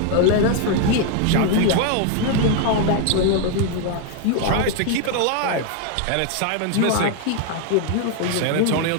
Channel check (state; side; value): different; both; correlation 0.01